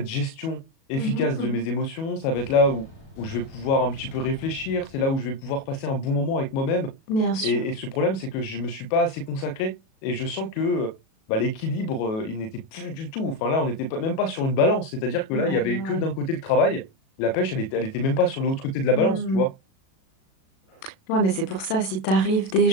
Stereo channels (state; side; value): late; right; 37 ms